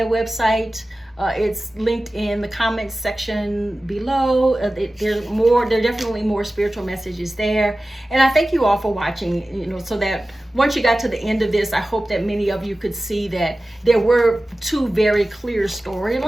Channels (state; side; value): normal; both; correlation 0.96